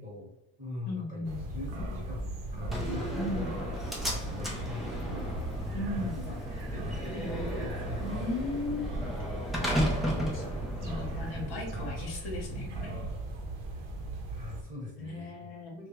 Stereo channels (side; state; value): both; normal; correlation 0.55